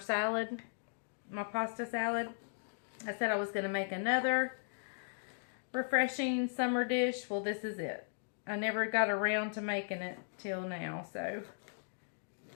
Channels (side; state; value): right; silent; digital silence